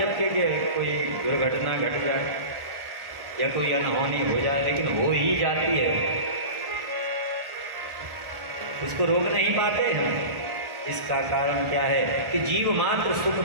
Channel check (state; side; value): late; left; 1.4 ms